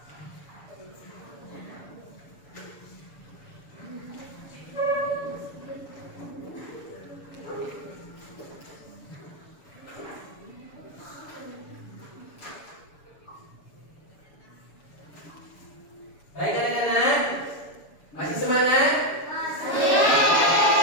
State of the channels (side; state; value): right; late; 6.9 ms